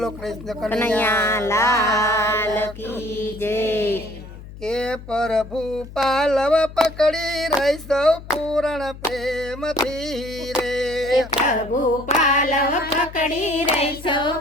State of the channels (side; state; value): left; noise; hum, 15 dB below the sound